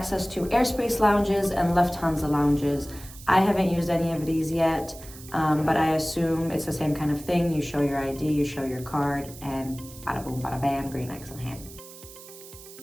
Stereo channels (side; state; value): right; noise; hiss, 17 dB below the sound